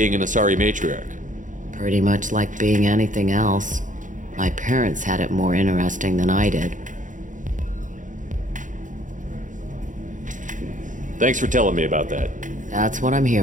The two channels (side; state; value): left; late; 0.37 ms